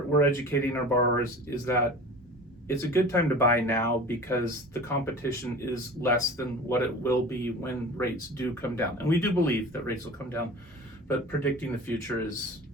educating our borrowers is that it's a good time to buy now because the competition is less than what it will be when rates do come down. And we do believe that rates will come down, but predicting the future is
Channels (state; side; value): normal; both; correlation 0.38